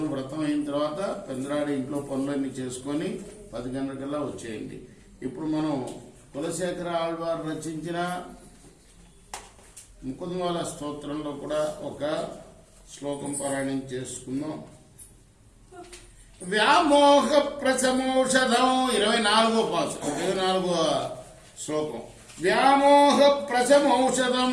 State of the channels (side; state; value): both; identical; correlation 1.00